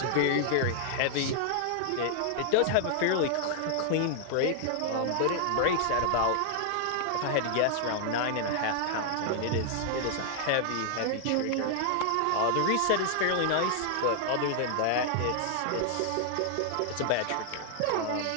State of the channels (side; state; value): both; different; correlation -0.01